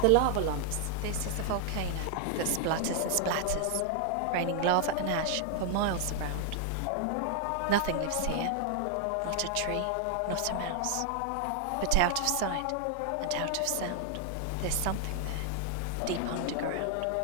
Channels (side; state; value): both; different; correlation 0.00